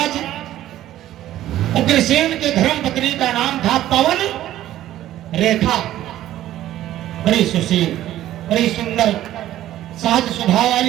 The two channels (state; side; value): quieter; left; 13.4 dB